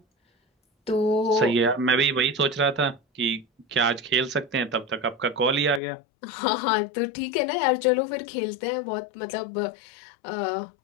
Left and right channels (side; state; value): right; drops out; at 5.8 s